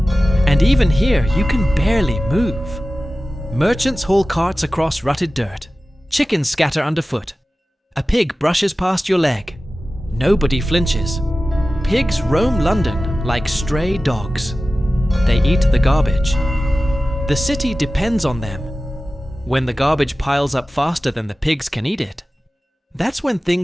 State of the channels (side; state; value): both; normal; correlation 0.95